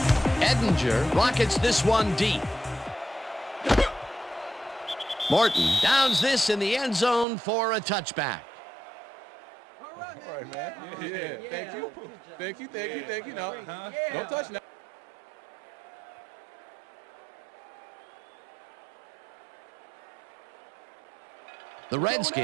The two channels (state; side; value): drops out; left; at 7.2 s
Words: Edinger rockets this one deep. Morton downs this in the end zone for a touchback. All right, man. Yeah. Thank you. Thank you. Thank you. Thank you. No, don't touch now. The